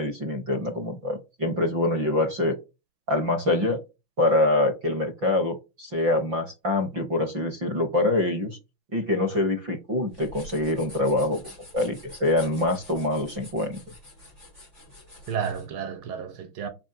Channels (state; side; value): late; left; 5.8 ms